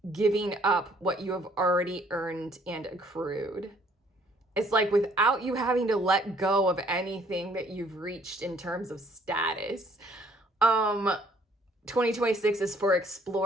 giving up what you have already earned and accrued. It's like without you having to let go of anything that you've reached in terms of status. 2026 is for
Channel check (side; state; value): both; normal; correlation 0.62